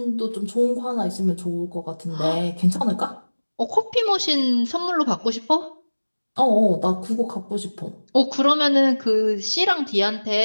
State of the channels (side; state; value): both; inverted; correlation -1.00